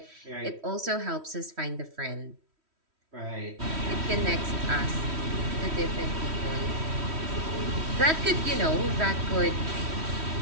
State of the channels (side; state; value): left; late; 3.1 ms